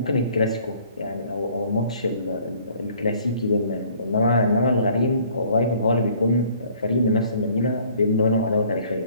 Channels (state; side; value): inverted; both; correlation -0.57